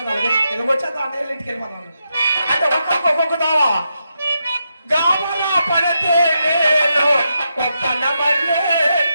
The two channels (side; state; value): both; inverted; correlation -0.84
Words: అలాగే ఎలాగొచ్చేది అన్నీ ఇంటికి వెళ్ళిపోతాను అంటే ఒక్కొక్క తోవ గామల పడితే నేను ఒప్పన మళ్ళీ